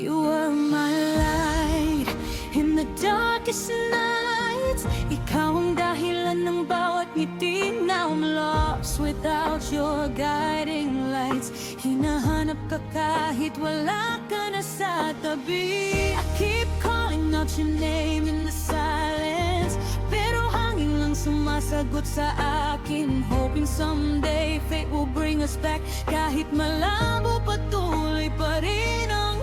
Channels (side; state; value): both; identical; correlation 1.00